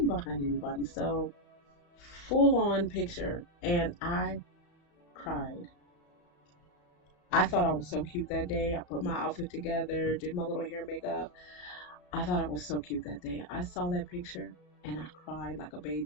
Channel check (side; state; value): right; late; 34 ms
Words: behind anybody. So full on picture, and I cried. I thought I was so cute that day. I put my outfit together, did my little hair makeup. I thought I was so cute that day. I saw that picture and I cried like a